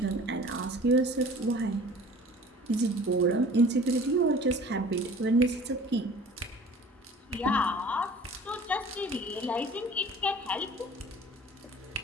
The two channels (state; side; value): normal; both; correlation 0.46